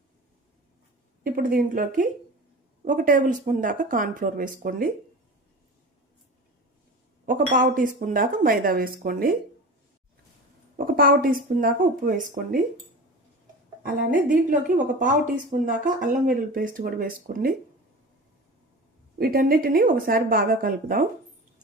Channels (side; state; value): both; normal; correlation 0.33